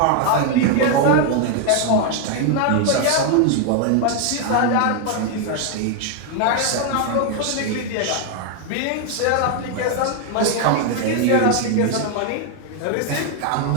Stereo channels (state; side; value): different; both; correlation 0.00